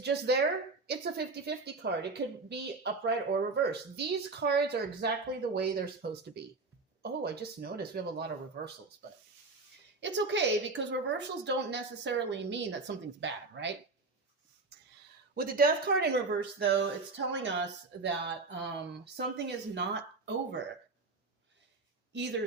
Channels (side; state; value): left; quieter; 3.7 dB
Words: just there, it's a 50-50 card. It could be upright or reverse. These cards are exactly the way they're supposed to be. Oh, I just noticed we have a lot of reversals, but it's okay because reversals don't necessarily mean that something's bad, right? With the Death card in reverse, though, it's telling us that something is not over.